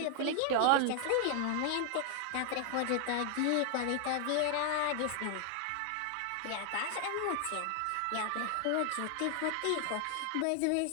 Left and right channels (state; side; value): different; both; correlation 0.00